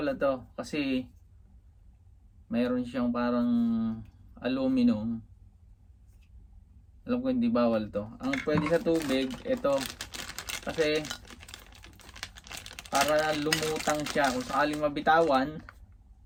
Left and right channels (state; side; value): identical; both; correlation 1.00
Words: to. Kasi mayroon siyang parang aluminum. Alam ko hindi bawal to. Ang pwede sa tubig, ito. Kasi para lumutang siya. Kung sakaling mabitawan,